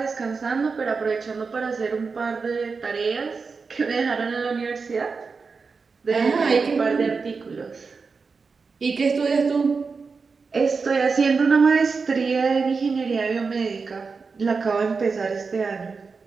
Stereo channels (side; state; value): left; quieter; 4.8 dB